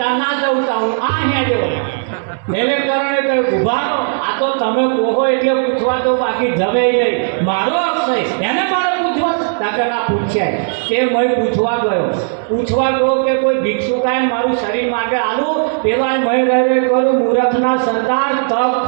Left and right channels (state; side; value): silent; left; 69 dB below the other